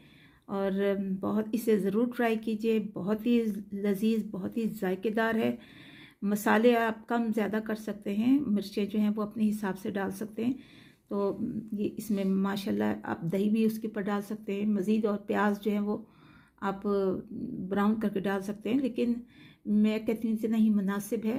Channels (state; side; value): identical; both; correlation 1.00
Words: और बहुत इसे ज़रूर ट्राई कीजिए। बहुत ही लजीज, बहुत ही जायकेदार है। मसाले आप कम ज़्यादा कर सकते हैं, मिर्चें जो हैं वो अपने हिसाब से डाल सकते हैं। तो ये इसमें माशाल्लाह आप दही भी उसके ऊपर डाल सकते हैं मज़ीद, और प्याज जो है वो आप ब्राउन करके डाल सकते हैं, लेकिन मैं कहती हूँ इतना ही मुनासिब